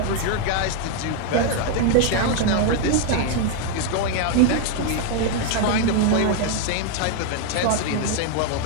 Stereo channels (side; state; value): both; different; correlation 0.00